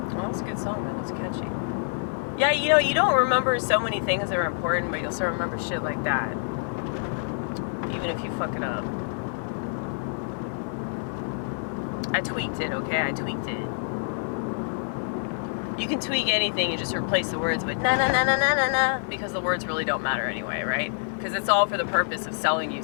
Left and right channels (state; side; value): silent; right; digital silence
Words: Well, it's a good song, man. It's catchy. Yeah, you know, you don't remember so many things that are important, but you'll still remember shit like that. Even if you fuck it up. I tweaked it, okay? I tweaked it. You can tweak anything, you just replace the words with na na na na na na na, because the words really don't matter anyway, right? Because it's all for the purpose of selling you